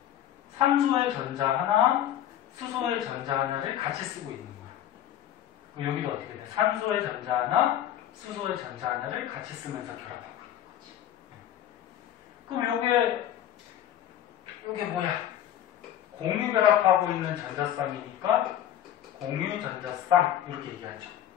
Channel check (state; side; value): quieter; right; 11.3 dB